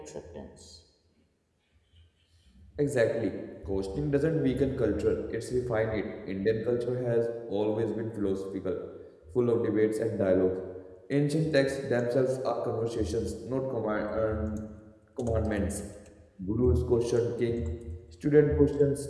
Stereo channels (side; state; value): both; identical; correlation 1.00